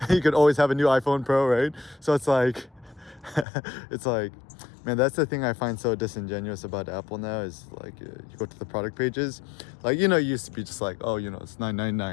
you could always have a new iPhone Pro, right? So it's like, man, that's the thing I find so disingenuous about Apple now is like, you go to the product pages, like, it used to be just like, oh, it's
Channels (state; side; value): drops out; right; at 3.5 s